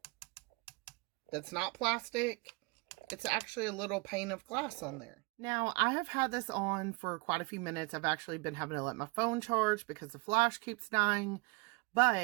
That's not plastic. It's actually a little pane of glass on there. Now, I have had this on for quite a few minutes. I've actually been having to let my phone charge because the flash keeps dying.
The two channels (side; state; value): left; quieter; 28.7 dB